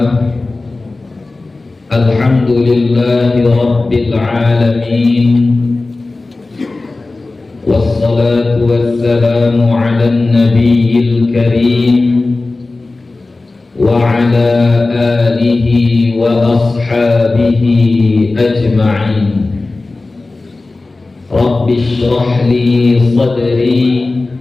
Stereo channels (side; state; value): right; quieter; 3.3 dB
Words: alhamdulillahi rabbil alamin, wassalatu wassalamu ala nabiyil karim wa ala alihi wa ashabihi ajma'in. Rabbi shrah li sadri